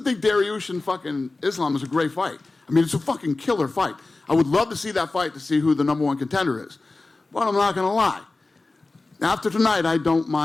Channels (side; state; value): right; quieter; 3.3 dB